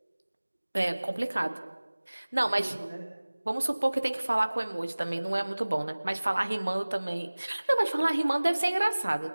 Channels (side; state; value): both; inverted; correlation -1.00